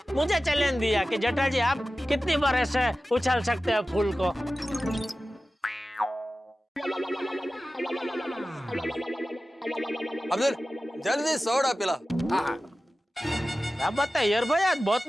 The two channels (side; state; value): both; normal; correlation 0.95